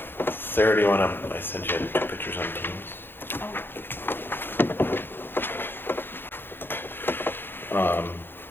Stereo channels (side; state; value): right; late; 0.10 ms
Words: Sarah, do you want to, I sent you 2 pictures on Teams.